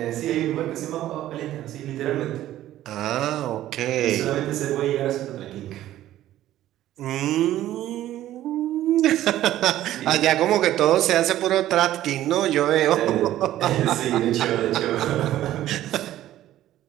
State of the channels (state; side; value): quieter; left; 13.5 dB